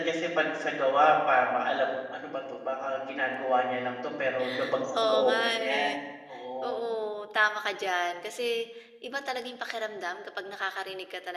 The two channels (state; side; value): identical; both; correlation 1.00